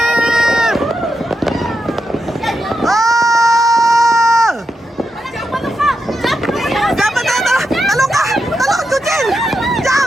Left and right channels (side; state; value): both; normal; correlation 0.86